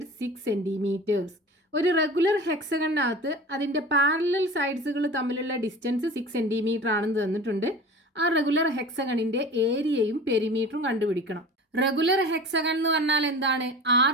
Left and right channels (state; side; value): normal; both; correlation 0.37